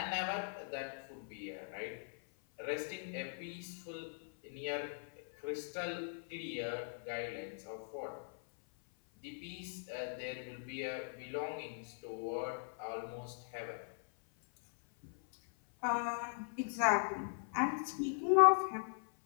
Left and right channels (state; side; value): silent; right; 51 dB below the other